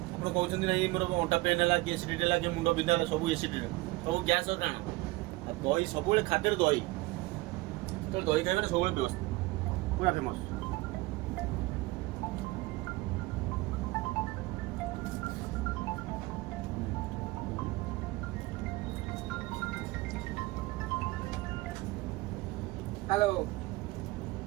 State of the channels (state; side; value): quieter; left; 21.6 dB